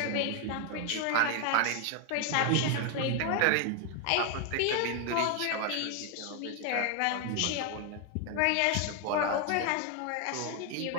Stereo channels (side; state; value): both; different; correlation 0.01